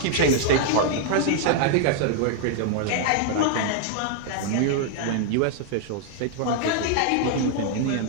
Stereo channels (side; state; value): both; different; correlation 0.00